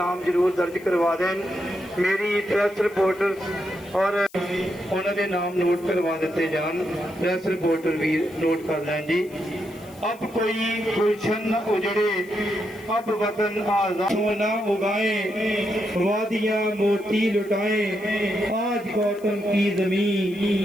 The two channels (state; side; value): noise; left; hiss, 25 dB below the sound